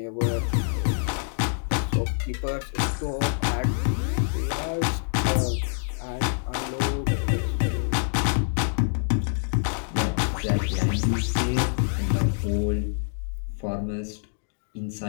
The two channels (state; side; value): silent; right; digital silence